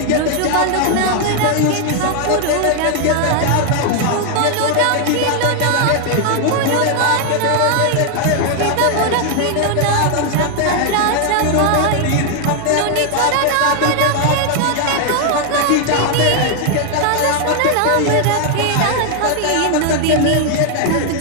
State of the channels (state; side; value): different; both; correlation 0.00